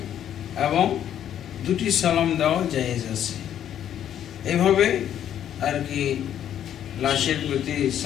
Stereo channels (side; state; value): right; quieter; 10.3 dB